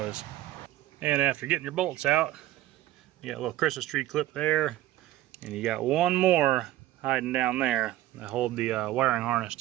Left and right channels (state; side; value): quieter; left; 15.0 dB